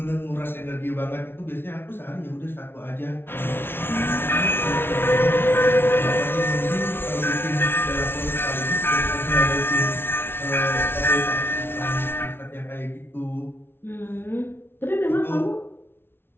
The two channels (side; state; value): right; late; 0.11 ms